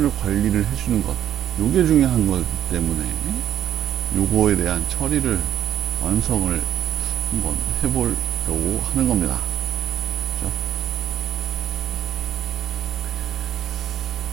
관리를 해주는 것 요게 중요한 거기 때문에 요거에 대한 처리를 완성을 한번 해보려고 하는 겁니다. 그렇죠?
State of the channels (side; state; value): left; quieter; 10.8 dB